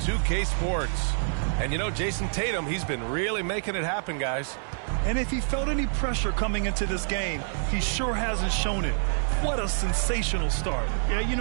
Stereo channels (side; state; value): left; silent; digital silence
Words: Sports. And you know, Jason Tatum, he's been really making it happen, guys. And if he felt any pressure coming into this game, he sure hasn't shown it. What a sensational start. Yeah, you